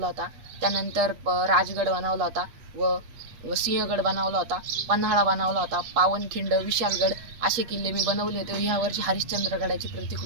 होता, त्यानंतर राजगड बनवला होता व सिंहगड बनवला होता, पन्हाळा बनवला होता, पावनखिंड, विशालगड असे किल्ले मी बनवले होते। ह्या वर्षी हरिश्चंद्रगडाची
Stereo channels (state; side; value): late; left; 8.3 ms